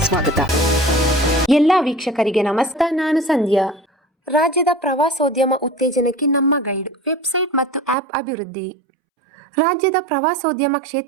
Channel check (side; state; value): left; drops out; at 8.0 s